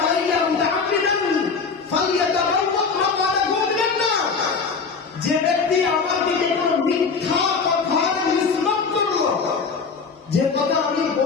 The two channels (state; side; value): quieter; right; 5.1 dB